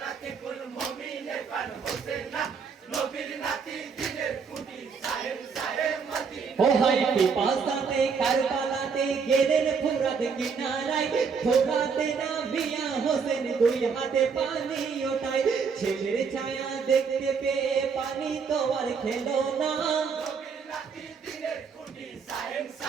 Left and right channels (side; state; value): left; quieter; 5.7 dB